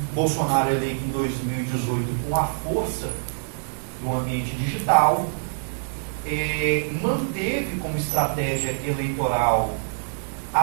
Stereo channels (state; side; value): silent; left; digital silence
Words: Bolsonaro, eleito em 2018 com a força do ambiente digital, manteve como estratégia eleitoral